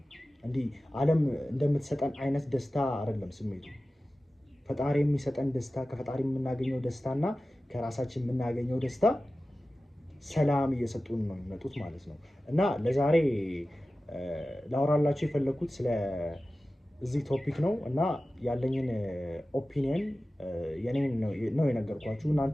እንዲህ ዓለም እንደምትሰጠን አይነት ደስታ አይደለም ስሜቱ። ፈጣሪ የሚሰጠን ደስታ፣ ከፈጣሪ የምናገኘው ደስታና ከራሳችን የምናገኘው ደስታ ሰላም እየሰጡን ነው የሚመጡት ማለት ነው። እና ለዛሬ ላወራላችሁ የፈለኩት እዚህ ቶፒክ ነው እና ያለኝን ኦፒኒየን የኔን ነው የነገርኳችሁ።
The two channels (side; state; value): both; normal; correlation 0.95